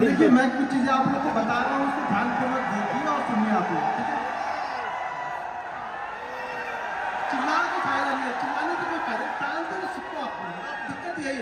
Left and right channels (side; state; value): both; identical; correlation 1.00